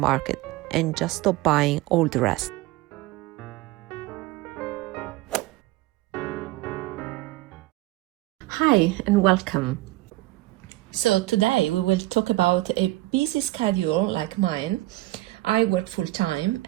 and just stop buying all the rest. Hi and welcome. So today we will talk about a busy schedule like mine. I work full-time,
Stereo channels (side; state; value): left; quieter; 18.4 dB